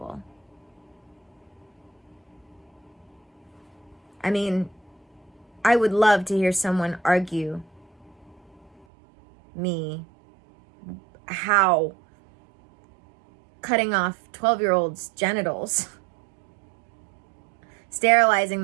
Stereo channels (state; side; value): drops out; left; at 8.8 s